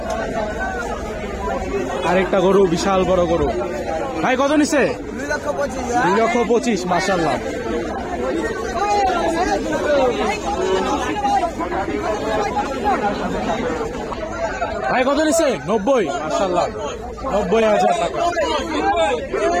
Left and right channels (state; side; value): identical; both; correlation 1.00